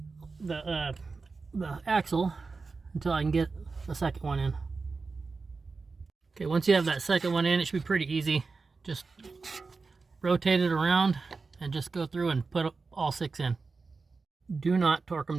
the axle until I can get the second one in. Okay, once you have that second one in, it should be pretty easy. Just rotate it around and just go through and put all 6 in. Do not torque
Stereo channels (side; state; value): left; quieter; 4.3 dB